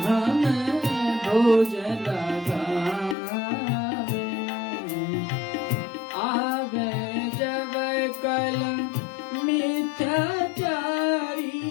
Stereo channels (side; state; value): right; drops out; at 3.2 s